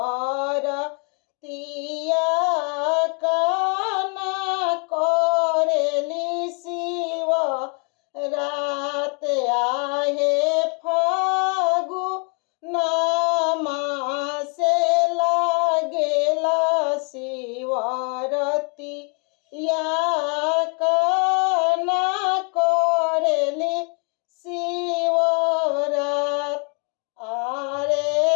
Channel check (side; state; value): right; quieter; 36.7 dB